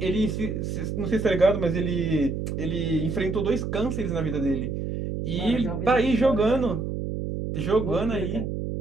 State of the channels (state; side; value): noise; right; hum, 4 dB below the sound